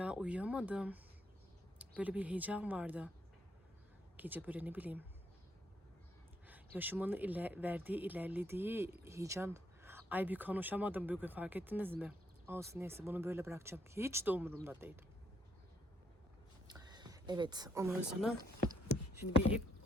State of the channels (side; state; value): both; normal; correlation 0.73